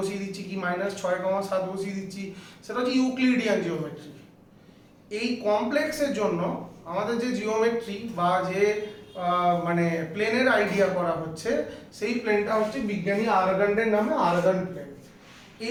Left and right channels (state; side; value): identical; both; correlation 1.00